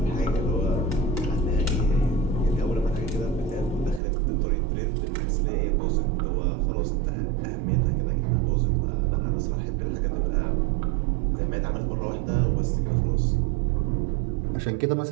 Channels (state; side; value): drops out; left; at 4.0 s